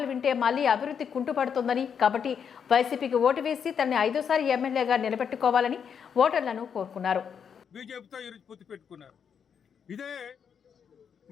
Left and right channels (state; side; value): quieter; right; 7.3 dB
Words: వింటే మళ్లీ అభివృద్ధి కుంటుపడుతుందని, కాబట్టి వైసీపీకి ఓటు వేసి తనని 5వ సారి ఎమ్మెల్యేగా నిలబెట్టుకోవాలని ఓటర్లను కోరుకున్నారు. బీజేపీతో ఈరోజు పొత్తు పెట్టుకున్నారు. ఇదే